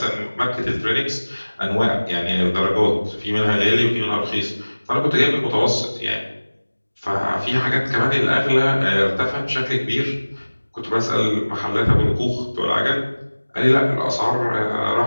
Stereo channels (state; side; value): inverted; both; correlation -1.00